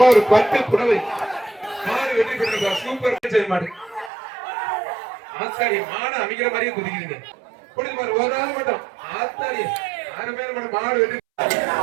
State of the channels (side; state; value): left; drops out; at 4.1 s